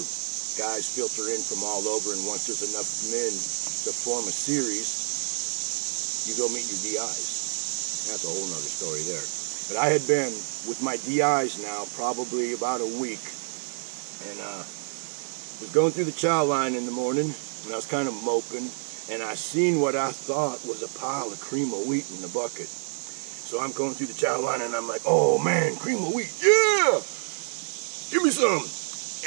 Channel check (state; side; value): silent; left; 60 dB below the other